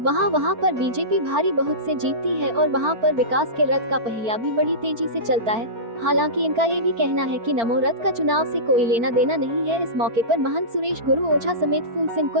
वहां पर बीजेपी भारी बहुत से जीतती है और वहां पर विकास के रथ का पहिया भी बड़ी तेजी से चलता है। हालांकि इनका ये भी कहना है कि नमो रथ का चुनाव से कोई लेना देना नहीं है। इस मौके पर महंत सुरेश गुरु ओझा समेत फूल सिंह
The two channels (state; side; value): late; left; 4.4 ms